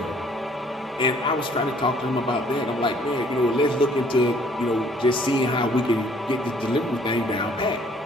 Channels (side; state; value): both; normal; correlation 0.60